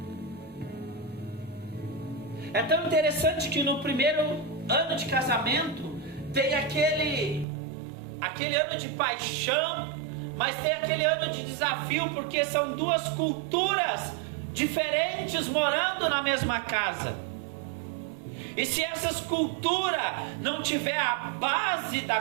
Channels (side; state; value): left; drops out; at 7.5 s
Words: É tão interessante que no primeiro ano de casamento tem aquele ano de paixão, mas tem aquele ano de desafio, porque são duas culturas diferentes morando na mesma casa. E se essas culturas não tiver a base da